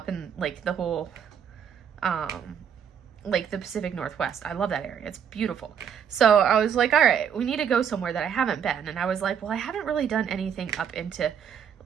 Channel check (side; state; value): left; quieter; 8.0 dB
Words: in like the whole, like the Pacific Northwest. I love that area. It's beautiful. So I was like, all right, we need to go somewhere that I haven't been. And I was like, well, I haven't really done anything up into